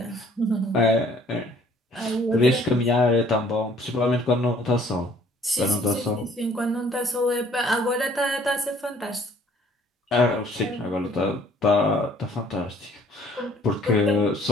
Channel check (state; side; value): normal; both; correlation 0.59